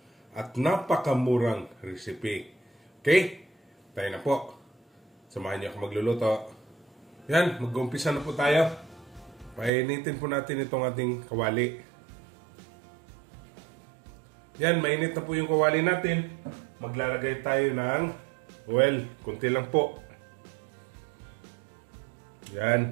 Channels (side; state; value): left; drops out; at 9.7 s